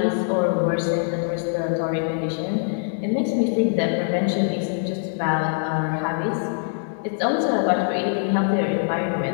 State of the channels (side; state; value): right; silent; digital silence